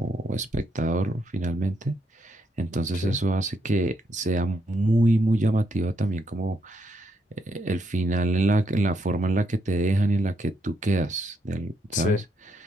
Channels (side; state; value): both; normal; correlation 0.77